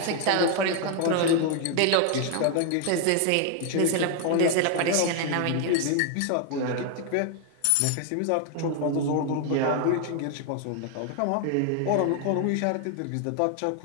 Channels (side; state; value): both; different; correlation 0.00